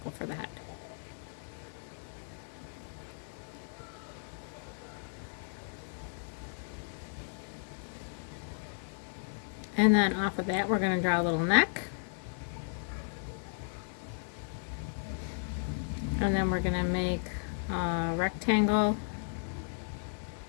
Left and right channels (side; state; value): right; silent; digital silence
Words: for the head. And then off of that, we're going to draw a little neck. And then we're going to make a rectangle